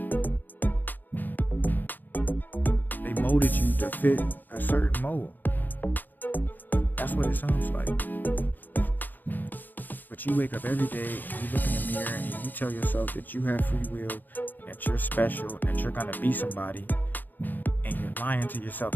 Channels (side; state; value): right; late; 0.087 ms